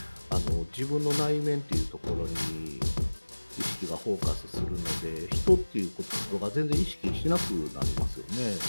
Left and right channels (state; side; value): inverted; both; correlation -1.00